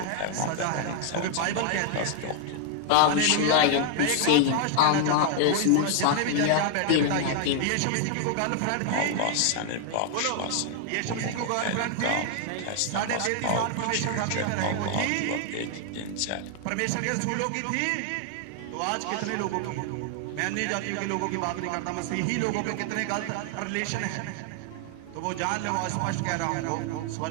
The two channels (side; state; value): both; different; correlation 0.00